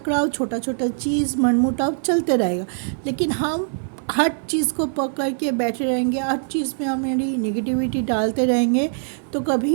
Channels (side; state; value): left; silent; 58 dB below the other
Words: छोटा छोटा चीज़, मनमुटाव चलते रहेगा। लेकिन हम हर चीज़ को पकड़ के बैठे रहेंगे, हर चीज़ में हमारी नेगेटिविटी डालते रहेंगे तो